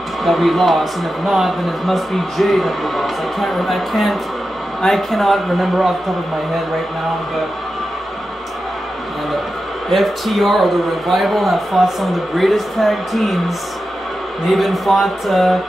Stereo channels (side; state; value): both; normal; correlation 0.91